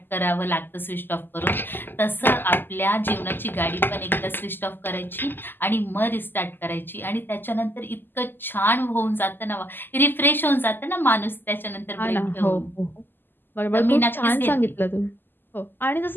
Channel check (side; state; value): right; late; 0.094 ms